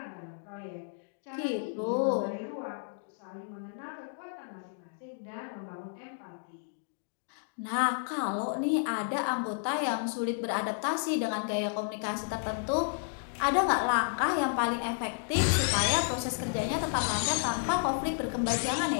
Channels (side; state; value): right; silent; digital silence